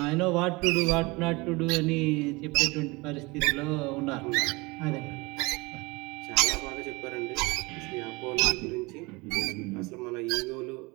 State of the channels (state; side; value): quieter; left; 25.1 dB